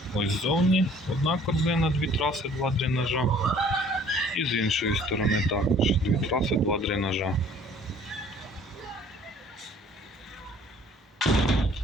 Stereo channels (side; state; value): both; normal; correlation 0.54